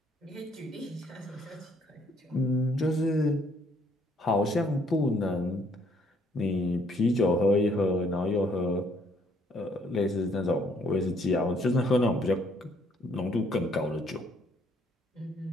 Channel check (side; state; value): both; normal; correlation 0.66